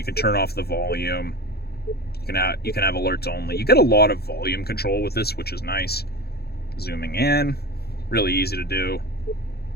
can turn off the volume. You can have alerts only. You get a lot of volume control with this, which is nice. Zooming in, really easy to do.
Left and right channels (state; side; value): late; right; 0.47 ms